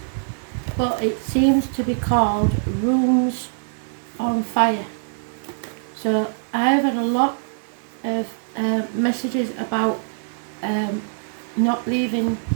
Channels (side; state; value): left; silent; digital silence